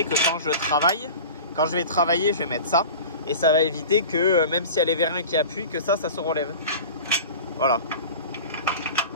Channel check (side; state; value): both; inverted; correlation -0.35